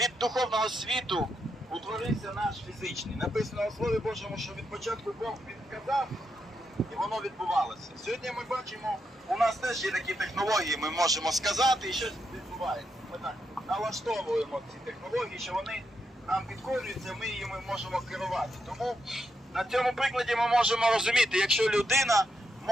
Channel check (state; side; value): normal; both; correlation 0.82